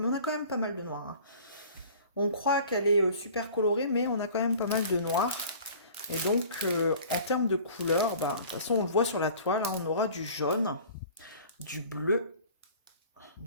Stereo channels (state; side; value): inverted; both; correlation -0.46